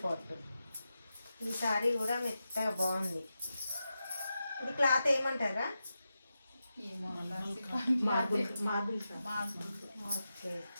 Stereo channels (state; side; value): inverted; both; correlation -0.89